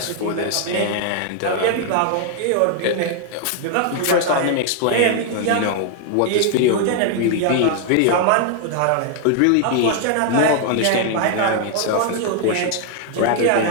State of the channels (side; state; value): both; different; correlation 0.00